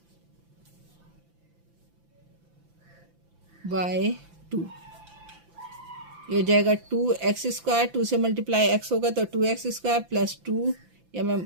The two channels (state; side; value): late; left; 5.9 ms